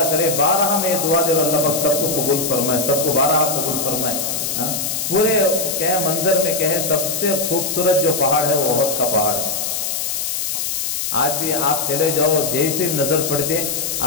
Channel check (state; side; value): noise; left; hiss, 2 dB below the sound